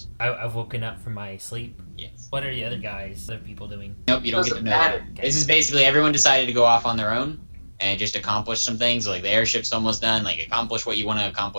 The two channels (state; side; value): inverted; both; correlation -1.00